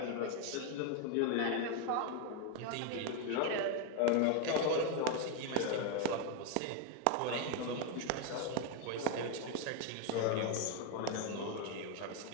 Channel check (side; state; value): both; different; correlation 0.01